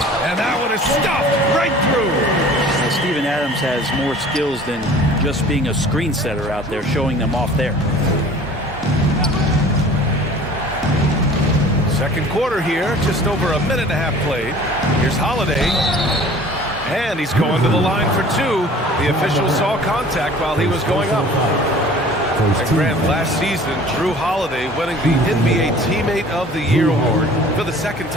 that one is stuffed right through. Well, Steven Adams has more skills than just being a screen setter out there, showing them off there. Second quarter here, just over a minute and a half played. Here's Holiday. And he's going to the line for 2. The official saw contact while he was going up. And Grant, last season, Drew Holiday winning the NBA Teammate of the Year award for the second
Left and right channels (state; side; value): normal; both; correlation 0.47